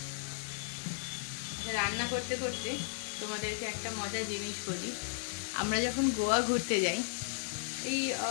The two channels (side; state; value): right; silent; digital silence